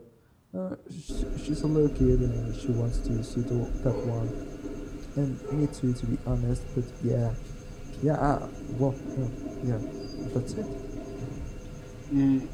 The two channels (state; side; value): identical; both; correlation 1.00